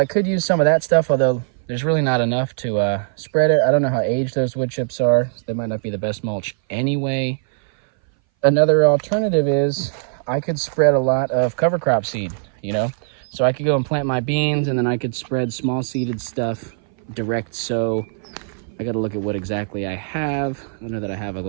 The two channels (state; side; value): silent; left; 60 dB below the other